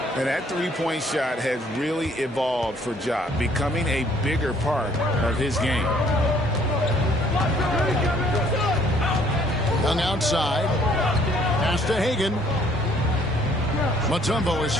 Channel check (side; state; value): both; normal; correlation 0.61